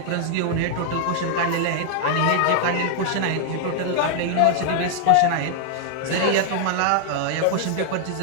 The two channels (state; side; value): different; both; correlation 0.00